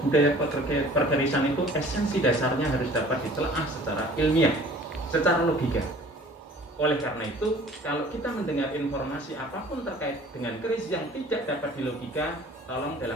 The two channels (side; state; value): both; normal; correlation 0.49